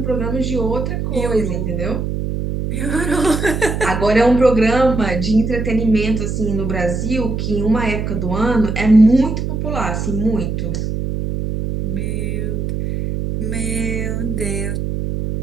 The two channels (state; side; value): noise; right; hum, 2 dB below the sound